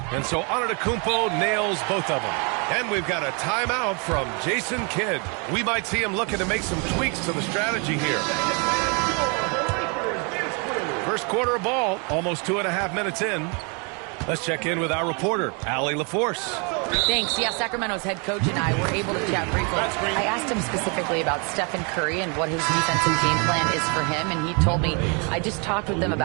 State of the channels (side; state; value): left; quieter; 34.4 dB